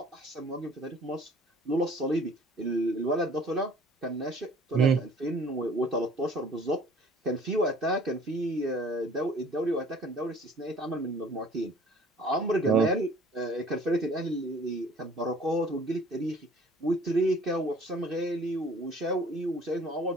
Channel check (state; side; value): normal; both; correlation 0.52